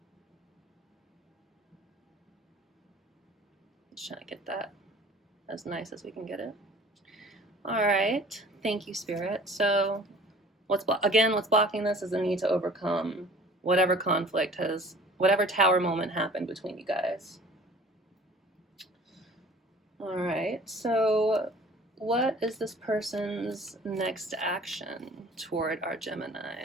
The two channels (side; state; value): both; normal; correlation 0.48